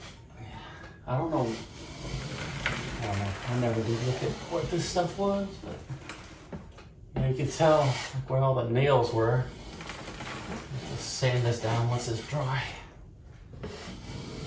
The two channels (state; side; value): identical; both; correlation 1.00